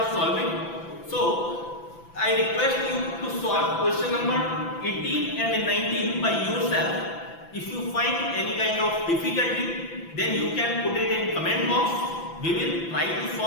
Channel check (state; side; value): late; right; 6.0 ms